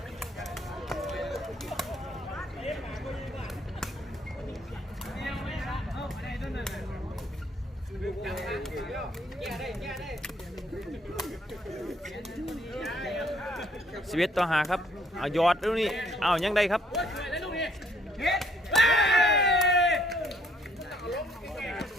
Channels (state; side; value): normal; both; correlation 0.66